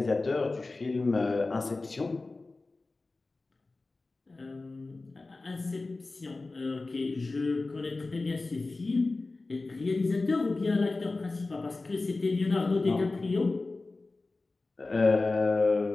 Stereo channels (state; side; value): quieter; right; 3.4 dB